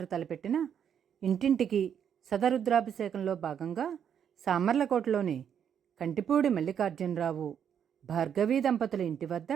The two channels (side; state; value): left; quieter; 8.4 dB